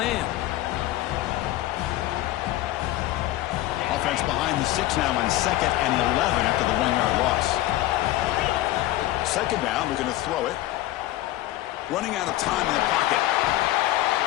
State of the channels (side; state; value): right; quieter; 15.9 dB